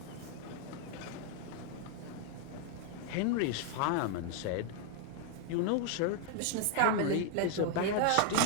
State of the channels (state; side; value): different; both; correlation 0.00